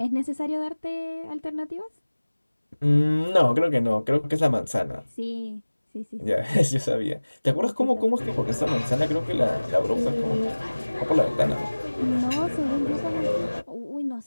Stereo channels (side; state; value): both; inverted; correlation -1.00